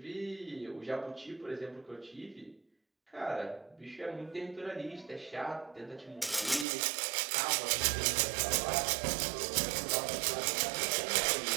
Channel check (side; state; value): left; drops out; at 6.7 s